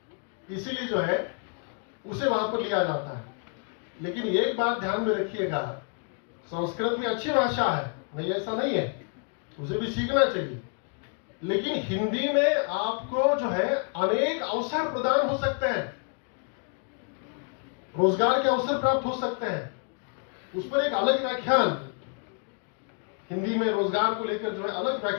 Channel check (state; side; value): quieter; right; 39.3 dB